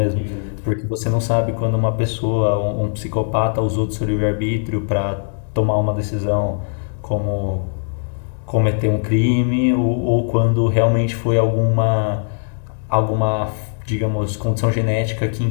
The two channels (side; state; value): right; silent; digital silence